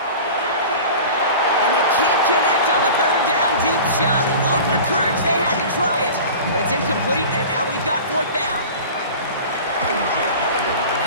And they can't connect on the third down deep shot. Love the courage they had to try it, but it's incomplete, and now we've got fourth down.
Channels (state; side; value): inverted; both; correlation -0.37